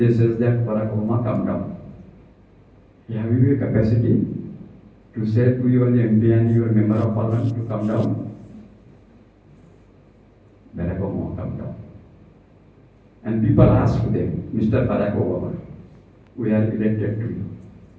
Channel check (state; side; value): identical; both; correlation 1.00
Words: says that Barack Obama, come down. Have you a capacity to say to your MP and your member of parliament to come down? Barack Obama, come down. And people ask them, Mr. Barack Obama, we are elected to you.